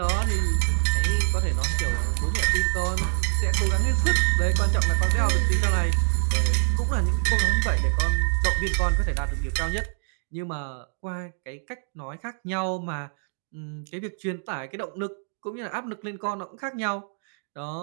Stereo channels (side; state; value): left; silent; digital silence